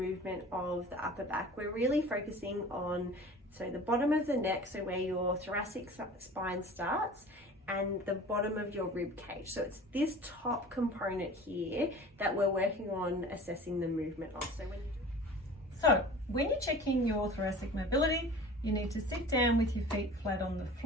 of the upper back, we're really focusing on the bottom of the neck, so where your thoracic spine starts, and the bottom of your rib cage. So it's this top component here that we're working on assessing the movement of. So when you're checking your thoracic mobility, you need to sit down with your feet flat on the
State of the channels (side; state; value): both; normal; correlation 0.41